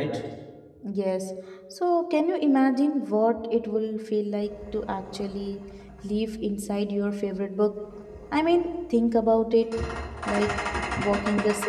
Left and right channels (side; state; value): both; identical; correlation 1.00